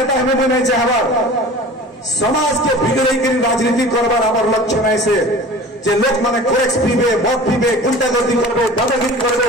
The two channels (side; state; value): both; normal; correlation 0.40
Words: হবে মুই নাই যে হবার समाज के बिगड़े राजनीति करवार आम लक्ष्य नहीं से जे लोक माने कोरेक्स पीबे मद पीबे गुंडागर्दी करबे दादागिरी करबे